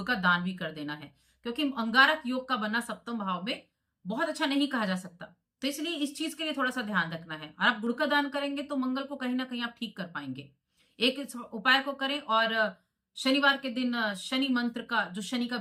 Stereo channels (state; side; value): identical; both; correlation 1.00